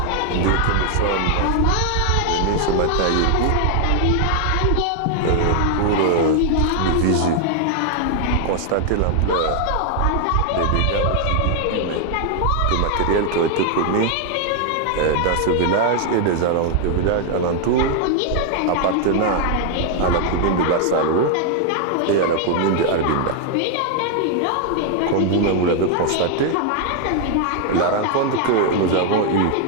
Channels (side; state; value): both; different; correlation 0.00